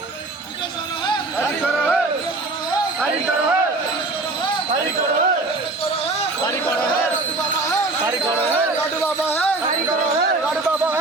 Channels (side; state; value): left; quieter; 3.2 dB